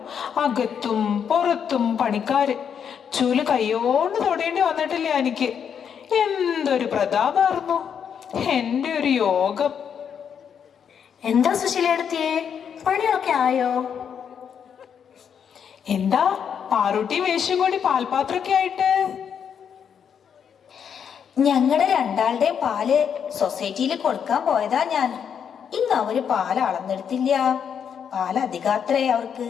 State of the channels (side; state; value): right; quieter; 7.7 dB